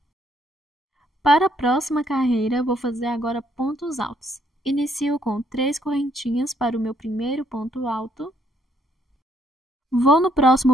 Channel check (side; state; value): both; normal; correlation 0.70